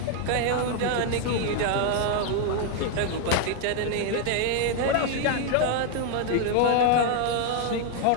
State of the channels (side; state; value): both; different; correlation 0.00